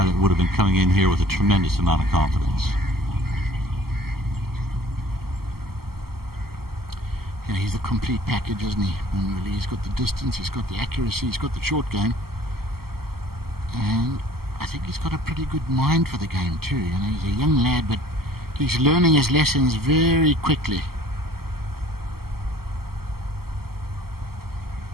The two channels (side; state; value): left; late; 0.95 ms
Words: that would have been coming in here with a tremendous amount of confidence. Yeah, he's the complete package, isn't he? And really, he's got the distance, he's got the accuracy, he's got the short game, and I think he's got a pretty good mind for the game too. You know, he's a young lad, but he's learning his lessons very quickly.